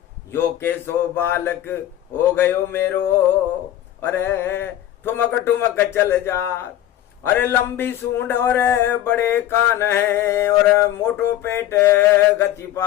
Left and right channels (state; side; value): quieter; right; 12.7 dB